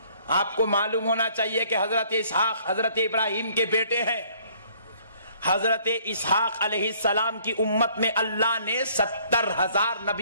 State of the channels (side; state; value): both; inverted; correlation -0.60